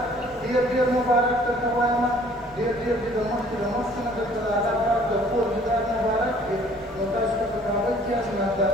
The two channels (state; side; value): noise; left; rumble, 25 dB below the sound